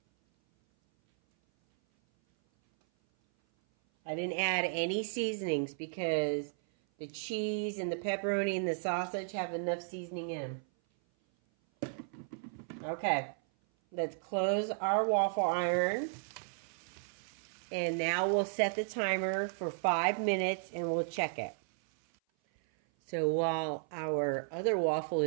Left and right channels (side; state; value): left; silent; 55 dB below the other